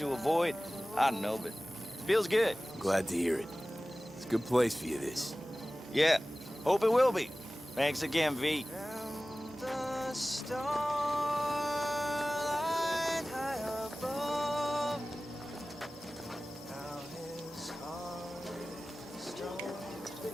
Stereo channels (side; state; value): both; normal; correlation 0.97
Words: avoid. I don't know, but feels good. Glad to hear it. It's a good place for you, this. Yeah, hope it will be. Thanks again, V.